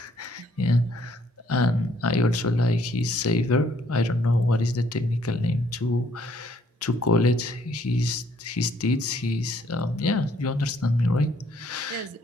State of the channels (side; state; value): both; normal; correlation 0.65